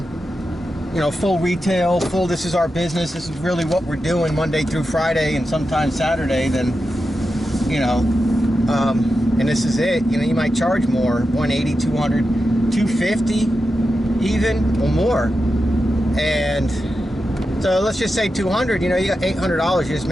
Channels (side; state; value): both; normal; correlation 0.90